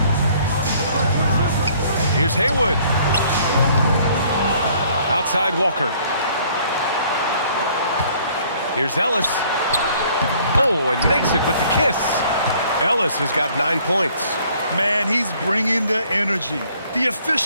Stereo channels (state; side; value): inverted; both; correlation -0.59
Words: Here's Haywood. Outside Walker. Here's Ellis. Oh, and makes it with the kiss. Ellis has got 9 points. Man, he's bringing the energy, the